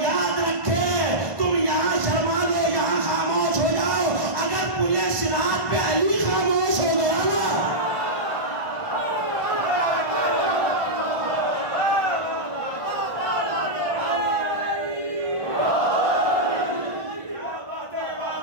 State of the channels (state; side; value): late; left; 1.5 ms